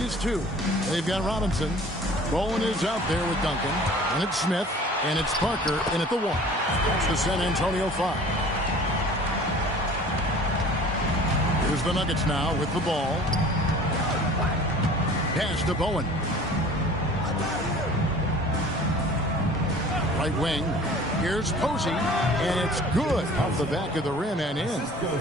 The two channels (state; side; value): normal; both; correlation 0.46